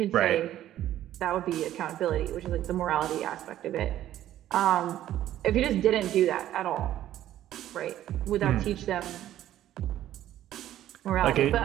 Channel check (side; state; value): left; quieter; 12.7 dB